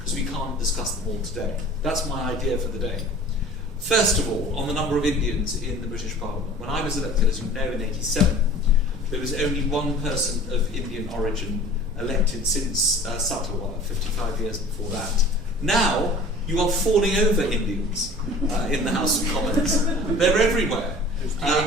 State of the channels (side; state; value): both; normal; correlation 0.44